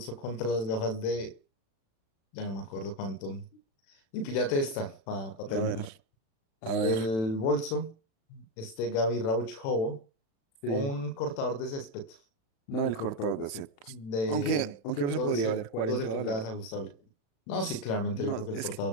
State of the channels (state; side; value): late; right; 36 ms